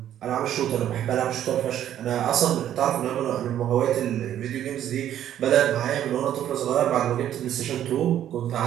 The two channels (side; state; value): left; quieter; 11.1 dB